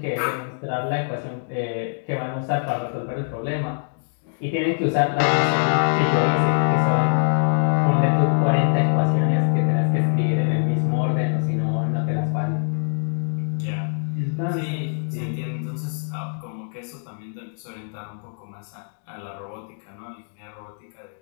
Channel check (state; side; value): silent; right; digital silence